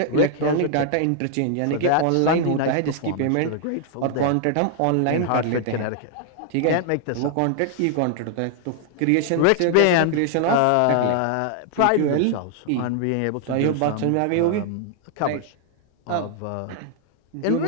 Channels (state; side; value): different; both; correlation 0.00